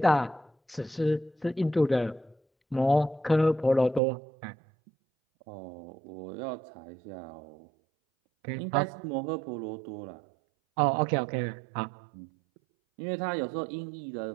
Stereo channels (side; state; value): left; drops out; at 4.0 s